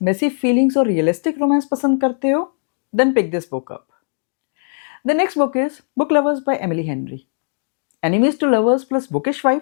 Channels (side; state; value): right; silent; digital silence